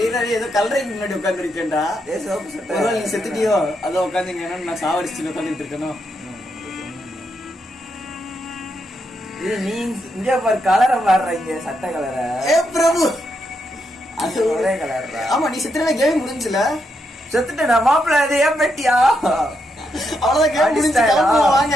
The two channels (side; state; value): both; normal; correlation 0.81